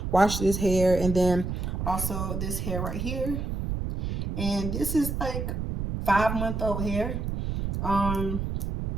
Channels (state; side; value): noise; right; rumble, 3 dB below the sound